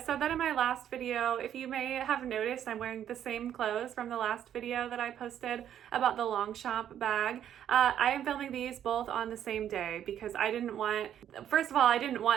that in my last video. If you may have noticed, I'm wearing the same clothes from the last video that I posted about the Longchamp bag. I am filming these both on the same day because I didn't want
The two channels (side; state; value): left; quieter; 10.1 dB